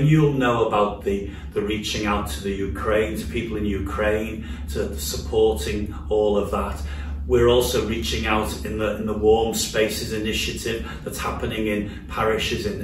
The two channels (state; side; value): identical; both; correlation 1.00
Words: you'll know about the reaching out to the Ukraine, to people in Ukraine, to supporting all of that. We're also reaching out in the Warm Spaces initiative that's happening in parishes,